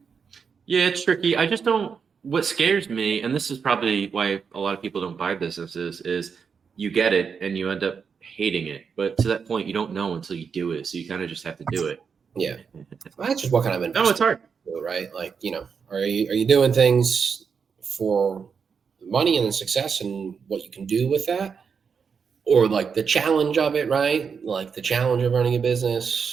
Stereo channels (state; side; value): quieter; left; 6.1 dB